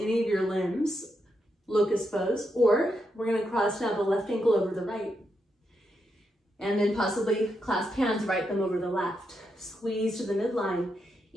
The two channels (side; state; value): both; normal; correlation 0.83